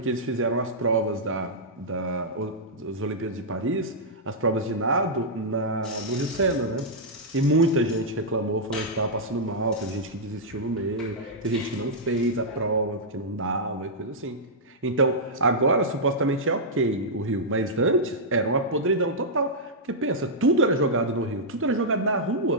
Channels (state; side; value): normal; both; correlation -0.10